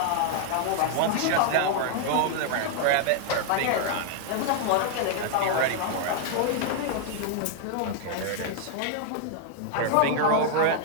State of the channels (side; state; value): both; different; correlation 0.00